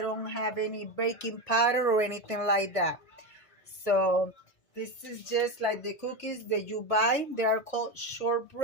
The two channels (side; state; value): right; late; 1.5 ms